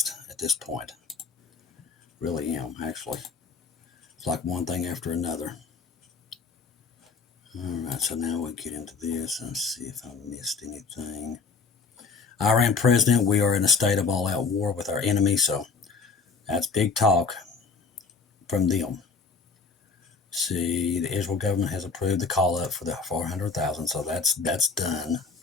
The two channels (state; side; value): quieter; right; 4.9 dB